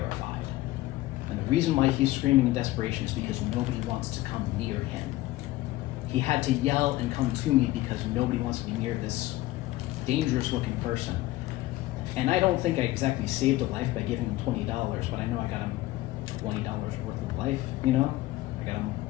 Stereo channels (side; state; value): right; quieter; 17.4 dB